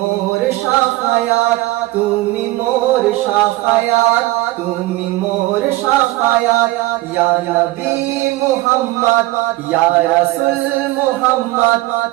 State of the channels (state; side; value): quieter; left; 18.8 dB